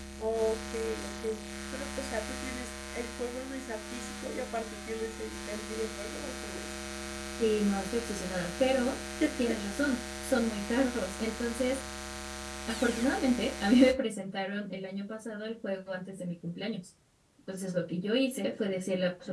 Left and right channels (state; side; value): identical; both; correlation 1.00